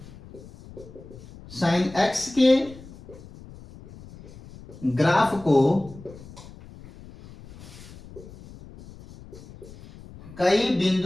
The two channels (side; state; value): left; noise; rumble, 18 dB below the sound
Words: साइन एक्स के ग्राफ को कई